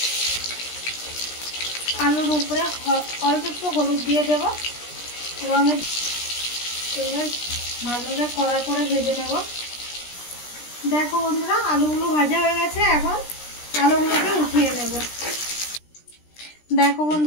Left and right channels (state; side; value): late; right; 17 ms